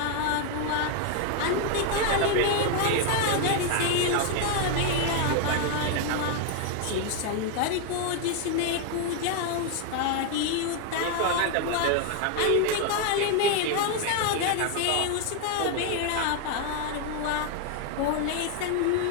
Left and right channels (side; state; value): both; different; correlation 0.01